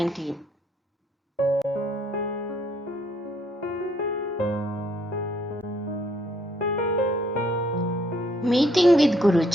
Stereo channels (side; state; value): both; normal; correlation 0.66